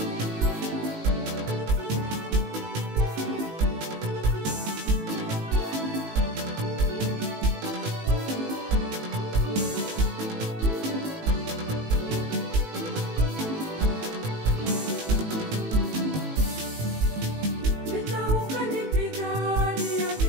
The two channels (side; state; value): left; late; 18 ms